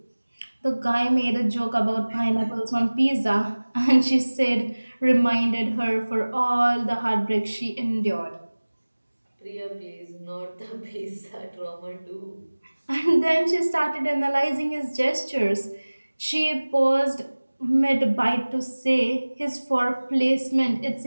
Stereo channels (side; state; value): both; inverted; correlation -1.00